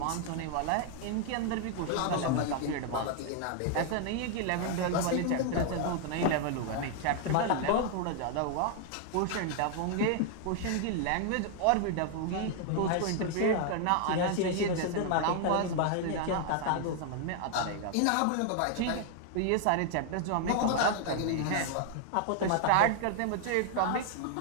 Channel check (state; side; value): different; both; correlation 0.00